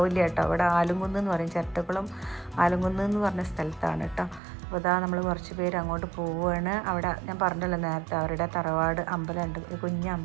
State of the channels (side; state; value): left; drops out; at 4.4 s